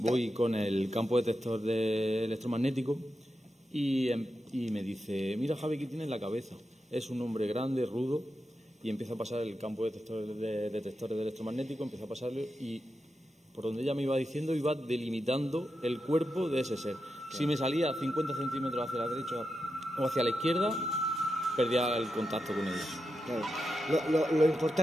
con el campo detector de electromagnético y me dice, mira Javi, ¿qué tiene en la cabeza? Es un hombre grande, rudo, y empieza a pasar el campo de detectores de electromagnético, empieza a pasarlo y por donde ella me iba diciendo iba delimitando el cuerpo de ese ser. Claro. Si me salía 50 centímetros hacia la derecha o hacia la izquierda, perdía el contacto con ella. Claro. Lo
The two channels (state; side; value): normal; both; correlation 0.88